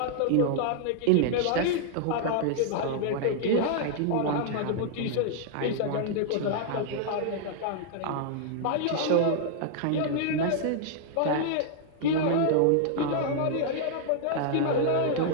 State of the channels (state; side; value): different; both; correlation -0.01